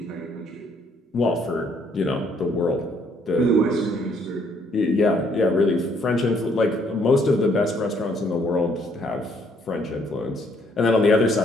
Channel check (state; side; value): normal; both; correlation 0.67